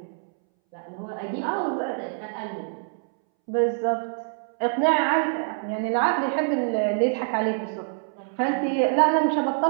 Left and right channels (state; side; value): silent; left; 61 dB below the other